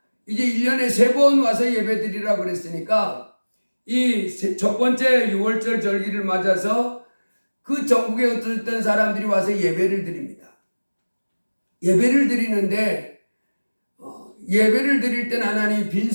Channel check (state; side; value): inverted; both; correlation -1.00